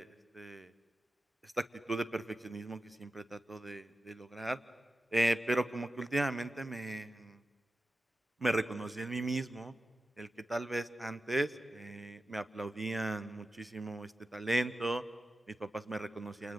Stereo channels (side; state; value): both; normal; correlation 0.93